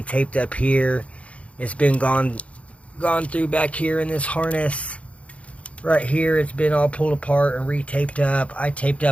taped up here. It's been gone through back here in this harness. Right here, it's been all pulled apart and re-taped up. I taped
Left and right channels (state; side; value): late; right; 0.064 ms